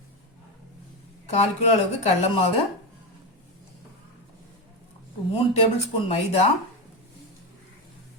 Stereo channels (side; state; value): both; normal; correlation 0.14